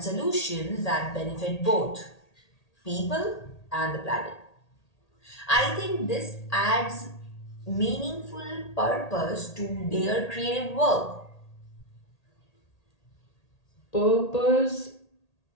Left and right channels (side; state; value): right; late; 1.8 ms